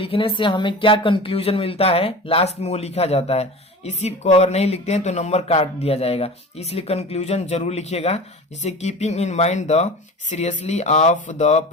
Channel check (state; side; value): normal; both; correlation 0.35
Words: से हमें क्या कंक्लूजन मिलता है, लास्ट में वो लिखा जाता है। इसी को अगर नहीं लिखते हैं तो नंबर काट दिया जाएगा, इसलिए कंक्लूजन जरूर लिखिएगा। जैसे keeping in mind the seriously of the